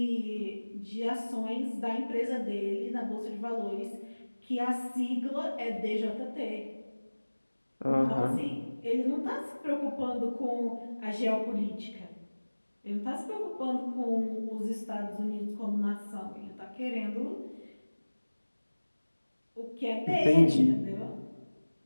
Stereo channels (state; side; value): inverted; both; correlation -1.00